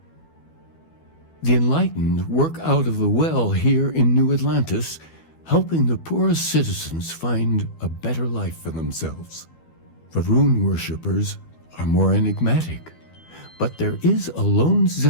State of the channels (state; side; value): late; right; 12 ms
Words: The enlightened work out of the well here in New Atlantis, helping the poorest citizens find a better life for themselves. Varun worshippers are more enigmatic, but there is a lone